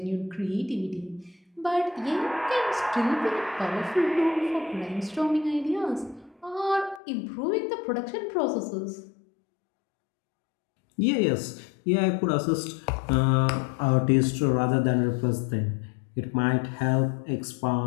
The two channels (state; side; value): drops out; right; at 7.0 s